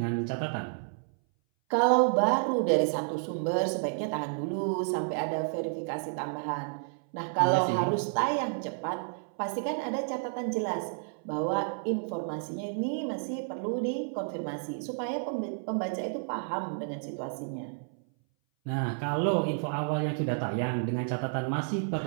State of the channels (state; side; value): silent; left; 57 dB below the other